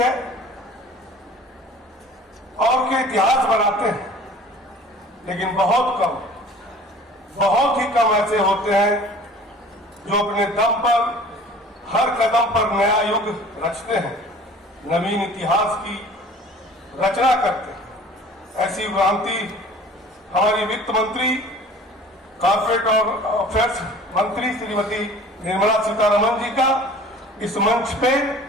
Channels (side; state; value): both; normal; correlation 0.47